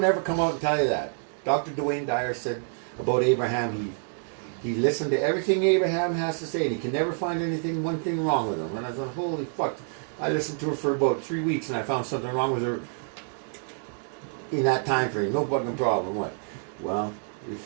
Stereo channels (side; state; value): left; silent; 60 dB below the other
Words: ever come out and tell you that. Dr. Dwayne Dyer said, about Abraham. He listened to everything Abraham has to say, and he can never find one thing wrong with him. And I thought, holy fuck. I listened to her for about 3 weeks, and I found something wrong with her in that time frame. No fucking problem. What? Well,